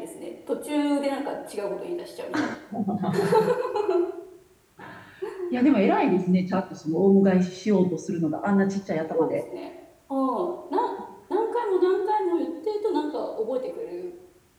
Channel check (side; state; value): both; identical; correlation 1.00